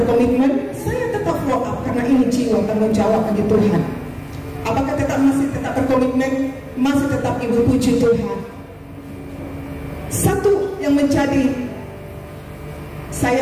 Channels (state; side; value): identical; both; correlation 1.00